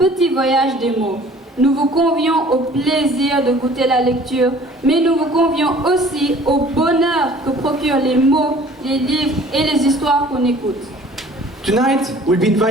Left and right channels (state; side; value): normal; both; correlation 0.51